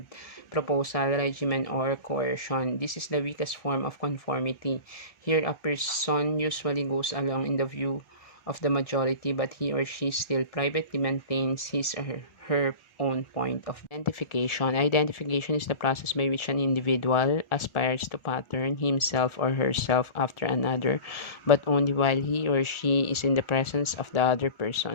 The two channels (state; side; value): late; right; 1.4 ms